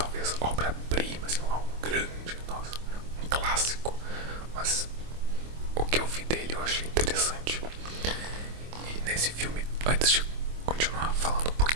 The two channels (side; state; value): left; late; 25 ms